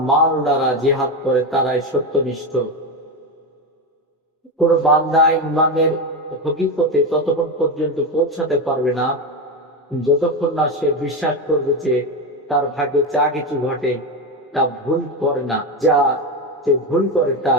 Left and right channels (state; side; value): normal; both; correlation 0.15